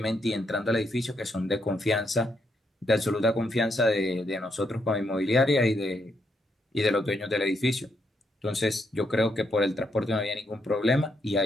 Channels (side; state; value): both; normal; correlation 0.77